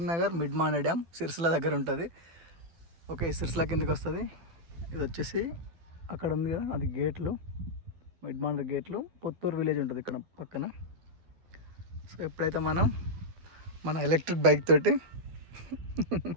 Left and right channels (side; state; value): left; late; 12 ms